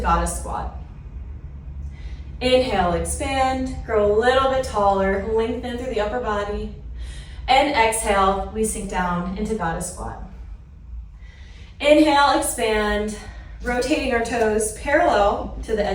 squat. Inhale, expand, grow a little bit taller, lengthen through the upper body. And exhale, we sink down into goddess squat. Inhale, expand, rotating our toes parallel to the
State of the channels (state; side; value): identical; both; correlation 1.00